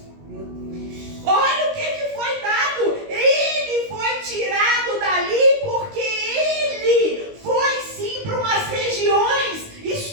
Olha o que foi dado. Ele foi tirado dali porque ele foi sim para umas regiões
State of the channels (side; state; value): left; late; 19 ms